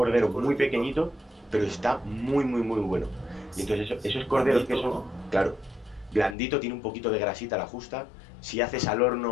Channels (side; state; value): right; drops out; at 6.4 s